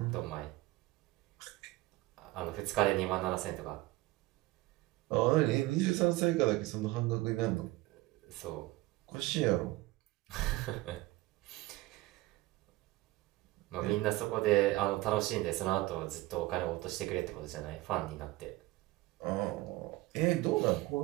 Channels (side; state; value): left; quieter; 18.9 dB